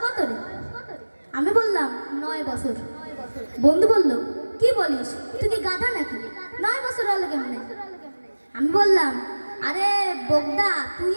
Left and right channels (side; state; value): both; inverted; correlation -1.00